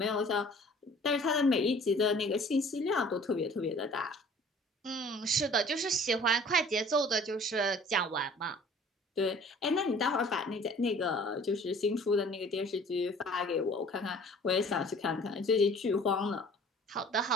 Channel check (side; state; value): both; normal; correlation 0.50